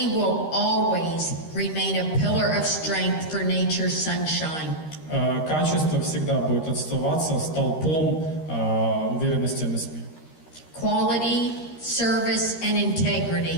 will always remain a pillar of strength for Nature's Sunshine. Качество всегда будет оставаться столпом уверенности NSP. Quality, service, and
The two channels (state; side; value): late; right; 13 ms